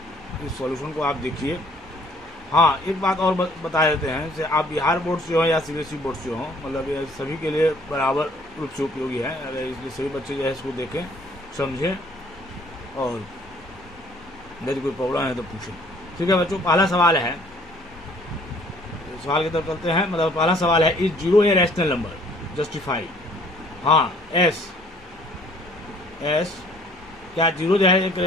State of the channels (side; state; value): both; normal; correlation 0.58